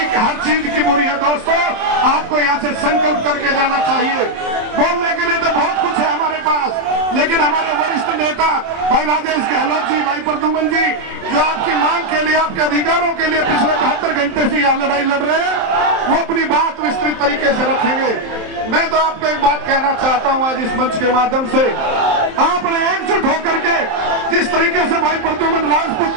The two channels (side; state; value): left; late; 27 ms